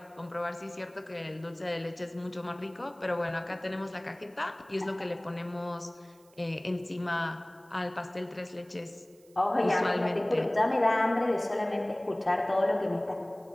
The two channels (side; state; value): right; noise; hiss, 29 dB below the sound